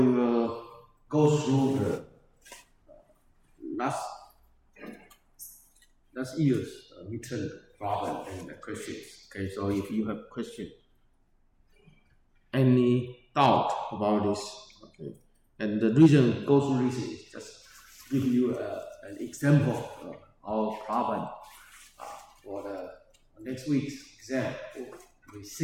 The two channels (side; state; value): both; identical; correlation 1.00